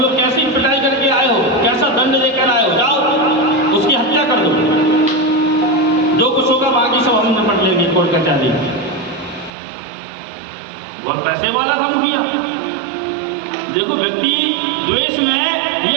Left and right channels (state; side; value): drops out; left; at 9.6 s